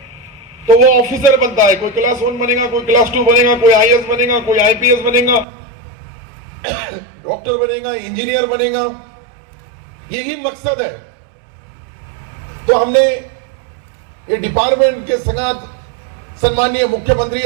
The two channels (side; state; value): left; drops out; at 5.5 s